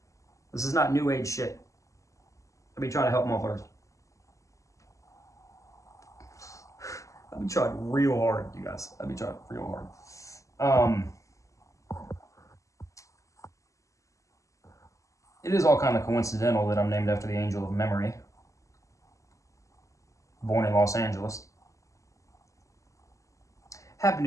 This is not new age shit. I'll be trying to help motherfuckers. I've been trying real hard, you guys. I've been trying real hard. It is all kind of coincidental that I'm named after the angel of memory. Born in Los Angeles. happen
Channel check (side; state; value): right; late; 0.16 ms